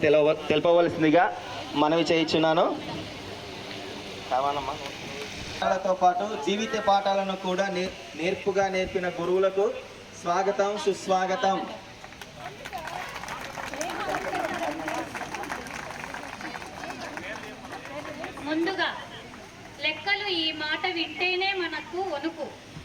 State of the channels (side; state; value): both; identical; correlation 1.00